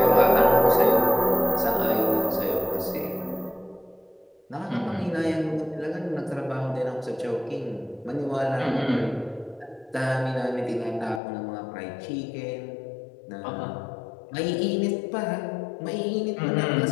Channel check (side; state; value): right; drops out; at 11.2 s